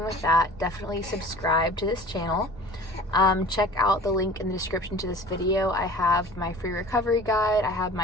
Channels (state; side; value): normal; both; correlation 0.43